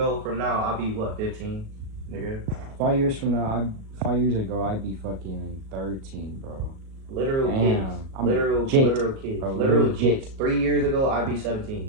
from now, I'll be what, 15, nigga? 5 years from now, 5 years ago, I'd be fucking 13, bro. Literal kids. Literal kids. Bro, literal kids. 3 years ago, I'd be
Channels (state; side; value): late; left; 37 ms